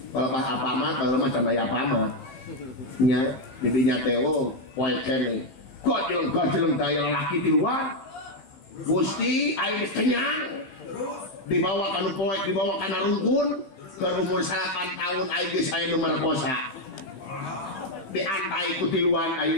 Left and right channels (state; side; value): late; right; 15 ms